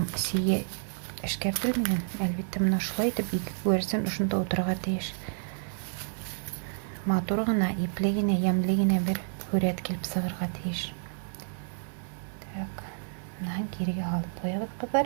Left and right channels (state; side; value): silent; left; digital silence